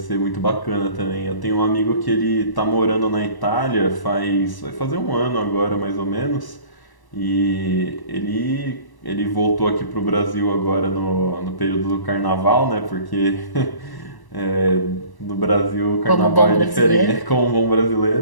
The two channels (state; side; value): late; right; 1.1 ms